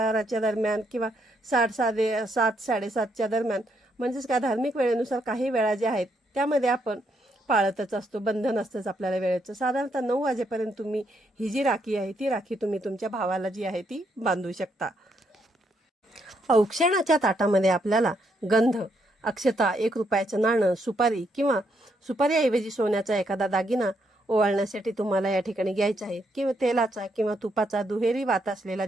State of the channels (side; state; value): both; normal; correlation 0.76